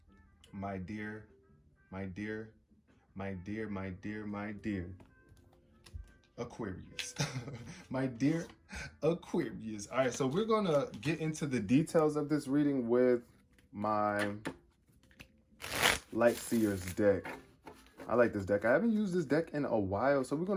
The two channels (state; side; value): identical; both; correlation 1.00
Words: My dear, my dear, my dear, my dear, my dear Aquarius. My dear Aquarius. All right, so we're going to get into the details of this reading with my Light Seers deck. I like this deck. I haven't used this deck in a while, so we're